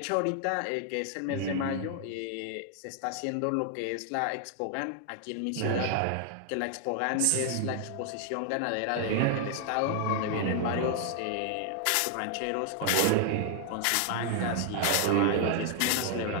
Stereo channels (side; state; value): both; different; correlation 0.00